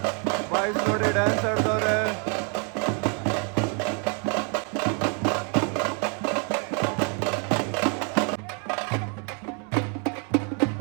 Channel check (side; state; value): left; quieter; 38.6 dB